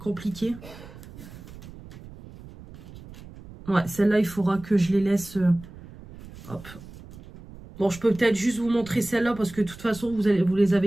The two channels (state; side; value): noise; right; rumble, 17 dB below the sound